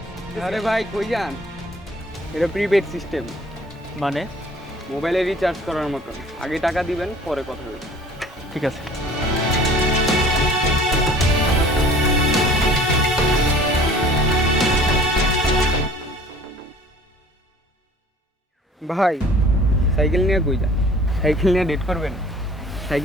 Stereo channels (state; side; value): normal; both; correlation 0.49